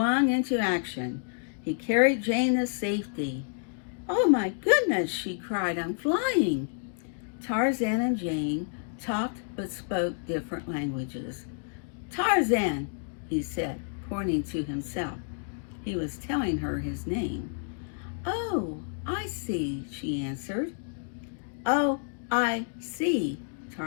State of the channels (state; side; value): silent; right; digital silence